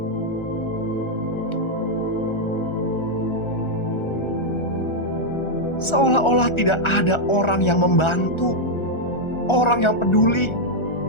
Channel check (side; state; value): right; late; 1.4 ms